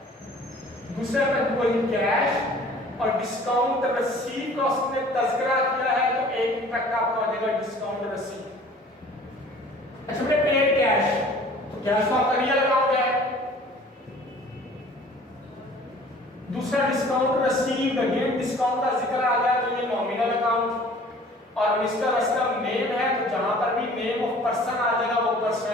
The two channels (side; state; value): both; normal; correlation 0.49